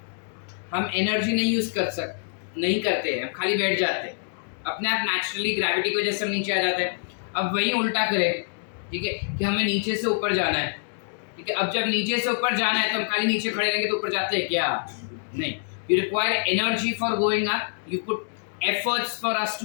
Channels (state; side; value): silent; right; digital silence